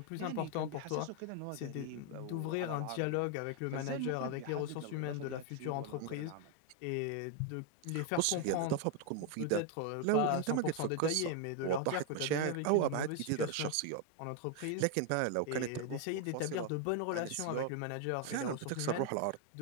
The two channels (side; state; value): both; different; correlation 0.01